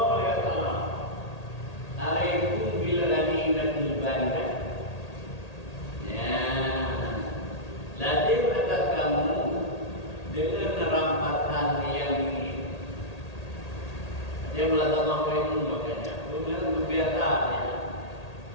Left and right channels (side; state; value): right; late; 1.8 ms